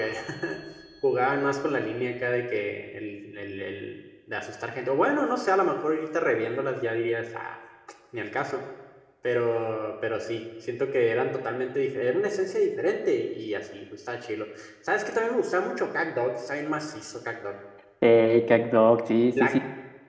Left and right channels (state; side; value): identical; both; correlation 1.00